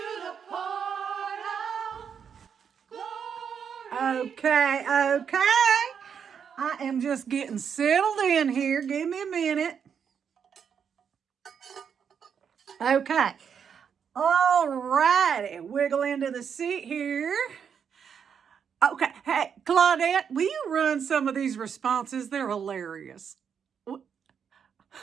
portal. Glory. Okay. I am just getting settled in here. Give me a minute. Okay. All righty. Wiggle into the seat here. Okay. Hey, Claudette, will you run some of these responses? They're hilarious.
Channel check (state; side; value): quieter; left; 7.3 dB